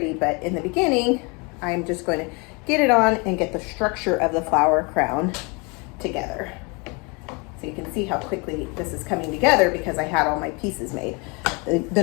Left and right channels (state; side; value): quieter; right; 30.2 dB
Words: But in the beginning, I'm just going to get it on and get the structure of the flower crown together. So you can see how quickly this is coming together because I had all my pieces made.